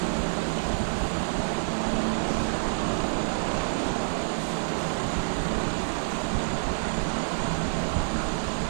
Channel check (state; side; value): silent; left; digital silence